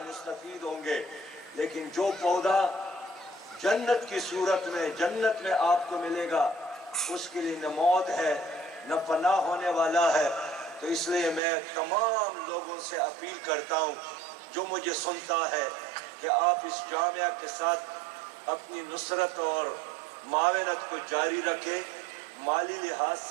مستفید ہوں گے، لیکن جو پودا جنت کی صورت میں جنت میں آپ کو ملے گا اس کے لیے نہ موت ہے نہ فنا ہونے والا ہے۔ تو اس لیے میں تمام لوگوں سے اپیل کرتا ہوں جو مجھے سنتا ہے کہ آپ اس جامعہ کے ساتھ اپنی نصرت اور معاونت کو جاری رکھیں، مالی لحاظ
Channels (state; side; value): drops out; left; at 11.4 s